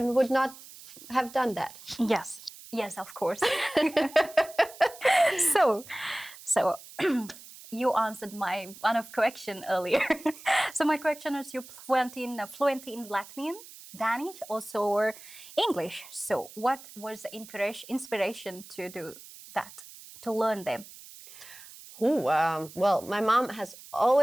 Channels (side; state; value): right; noise; hiss, 18 dB below the sound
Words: not have done that. Yes. Yes, of course. So you answered my one of question earlier. So my question is, you're fluent in Latvian, Danish, also or English. So what was the inspiration to do that, to learn them? Well, my mom has